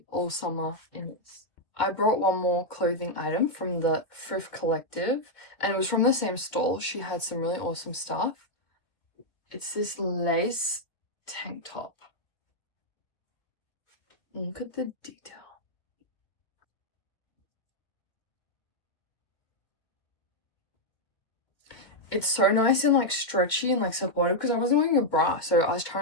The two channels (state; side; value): late; right; 2.1 ms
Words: all summer in this. I brought one more clothing item from the Thrift Collective, and it was from the same stall. She had some really awesome stuff. It's this lace tank top. Look at the detail. It's so nice and like stretchy and like supportive because I wasn't wearing a bra, so I was